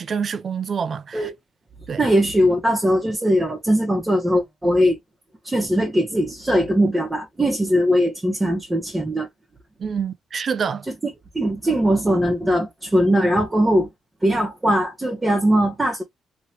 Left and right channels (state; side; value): normal; both; correlation 0.90